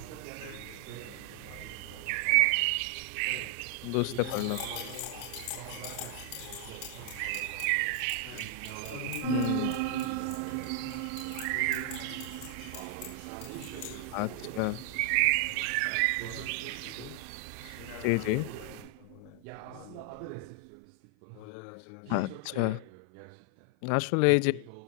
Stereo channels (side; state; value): both; different; correlation 0.00